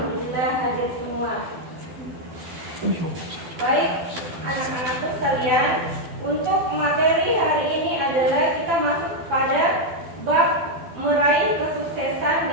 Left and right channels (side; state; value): left; late; 12 ms